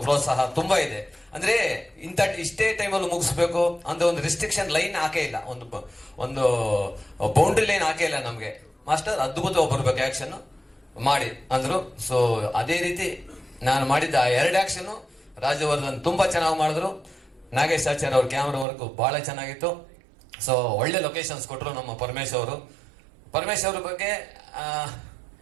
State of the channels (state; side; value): drops out; left; at 18.7 s